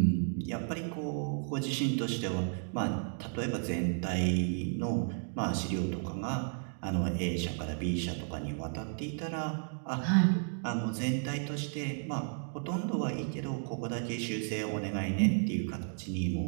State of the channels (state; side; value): silent; left; 56 dB below the other